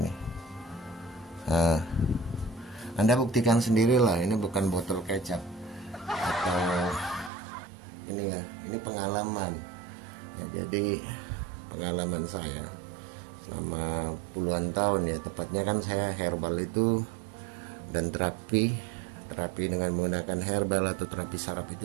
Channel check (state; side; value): drops out; left; at 7.3 s